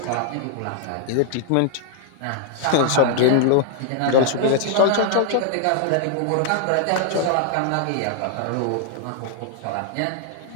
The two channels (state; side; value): different; both; correlation -0.01